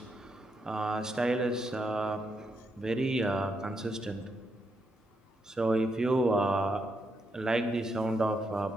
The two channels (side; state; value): both; normal; correlation 0.80